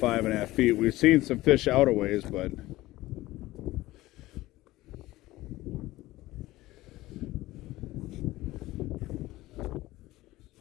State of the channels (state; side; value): quieter; right; 17.6 dB